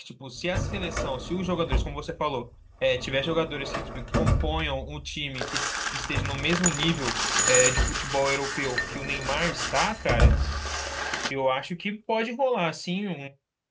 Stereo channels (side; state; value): both; identical; correlation 1.00